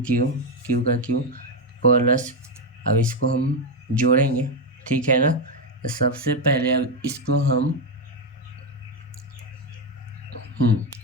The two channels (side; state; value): both; normal; correlation 0.07